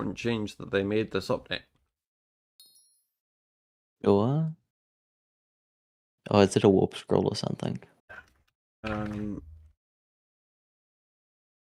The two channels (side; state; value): both; identical; correlation 1.00